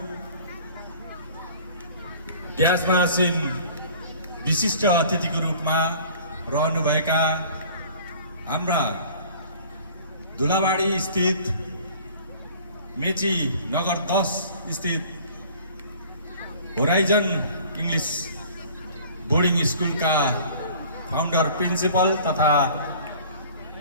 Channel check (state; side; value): inverted; both; correlation -0.48